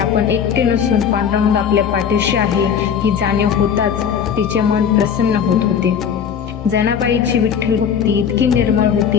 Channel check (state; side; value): quieter; right; 7.7 dB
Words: एकटे नसून पांडुरंग आपल्या पाठीशी आहे ही जाणीव होताच तिचे मन प्रसन्न होत होते. जनाबाईची विठ्ठल भक्ती इतकी निर्मळ